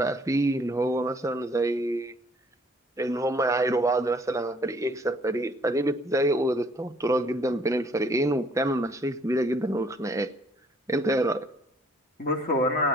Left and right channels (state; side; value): normal; both; correlation 0.61